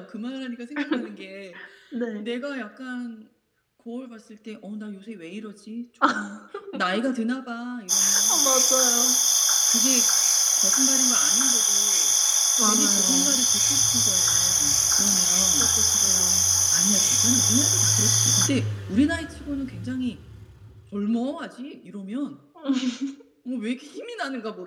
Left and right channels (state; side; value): identical; both; correlation 1.00